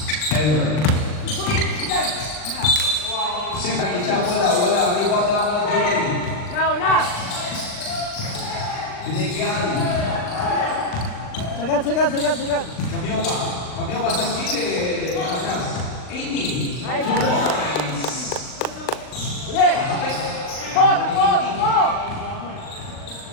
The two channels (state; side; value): late; right; 39 ms